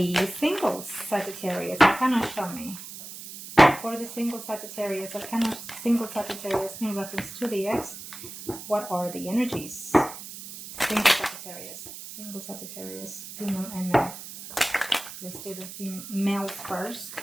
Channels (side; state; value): right; noise; hiss, 12 dB below the sound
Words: singles, Sagittarius. Kind of show me. For the single Sagittarius, single Sagittarius in reference to the ex, what are the energies? Single Sagittarius, female and male. Let's do the males first.